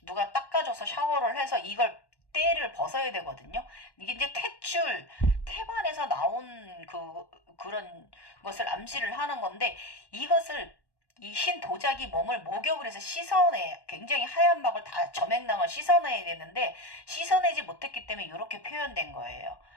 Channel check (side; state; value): right; late; 1.1 ms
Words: 누가 닦아줘서 샤워를 해서 이걸 때를 벗어야 되거든요. 이게 이제 태반에서 나온 그런 것을 암시를 하는 건데, 이것을 이 흰 도자기 몸을 목욕을 해서 씻어내, 굉장히 하얀 막을 다 점액낭을 씻어내야 되는데 씻어내지 못했기 때문에 이렇게 표현된 거예요.